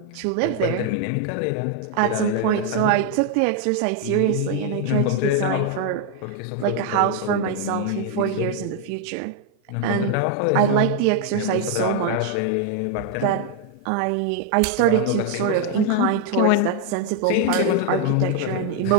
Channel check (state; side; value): different; both; correlation 0.00